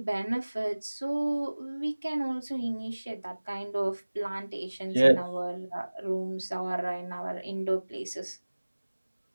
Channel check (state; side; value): inverted; both; correlation -1.00